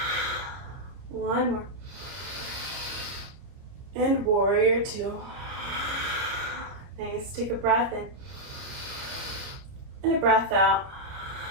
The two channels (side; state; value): left; late; 30 ms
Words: 1 more. And warrior two. Nice, take a breath in. And a breath out.